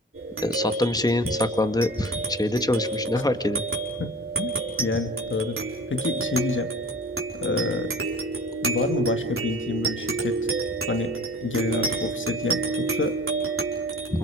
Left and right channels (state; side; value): normal; both; correlation 0.40